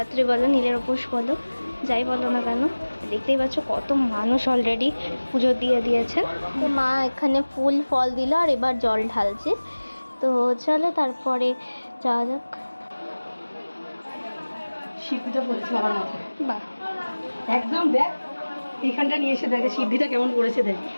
বলো, নীলের উপোস বলো, যাই বলো না কেন। দেখতেই পাচ্ছ কত মানুষ অলরেডি পুজো দিয়ে দিয়েছেন। তো মা এখানে ফুল ফল দিল, আর এবার জল ঢালছে। তো চলো তারপরে যাওয়া যাক। শিব পুজো করেছে আমার মাথায়। বাহ, একদম দেখ, এইখানটা নিয়ে এসে দেখে সিদ্ধিটা কেমন করেছে দেখ।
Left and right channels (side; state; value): both; inverted; correlation -1.00